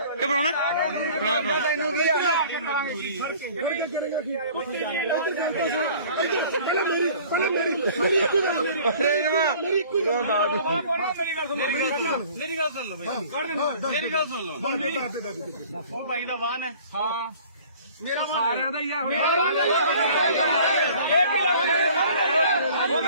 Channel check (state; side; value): inverted; both; correlation -0.49